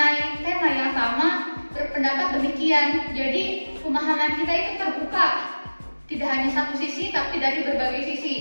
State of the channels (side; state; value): both; inverted; correlation -1.00